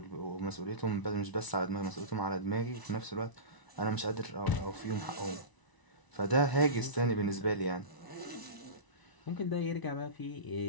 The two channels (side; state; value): right; late; 1.0 ms